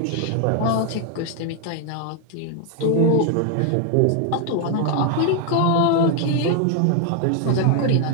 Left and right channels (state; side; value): different; both; correlation 0.01